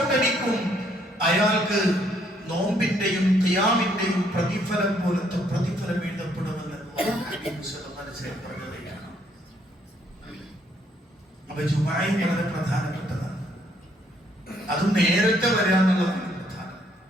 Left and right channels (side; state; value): both; normal; correlation 0.68